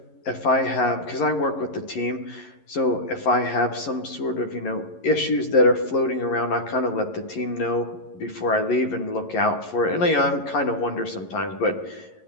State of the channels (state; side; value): late; right; 11 ms